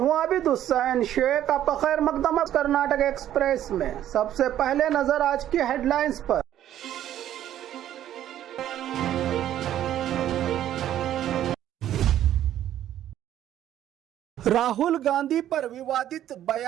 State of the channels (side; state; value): left; quieter; 11.7 dB